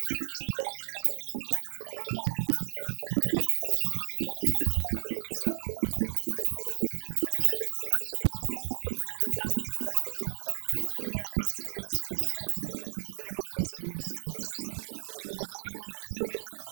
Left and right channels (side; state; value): left; silent; digital silence